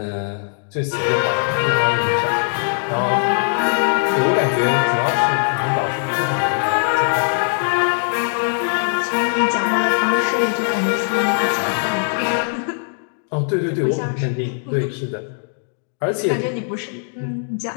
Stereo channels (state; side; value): silent; right; digital silence